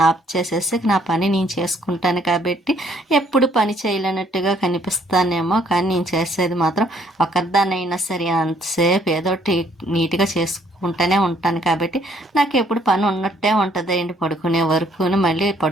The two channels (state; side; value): normal; both; correlation 0.65